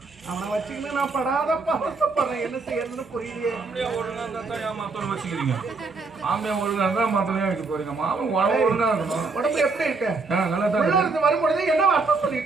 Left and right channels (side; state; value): left; quieter; 4.0 dB